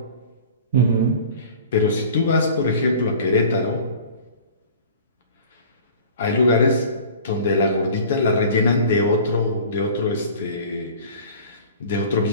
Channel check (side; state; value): both; inverted; correlation -0.43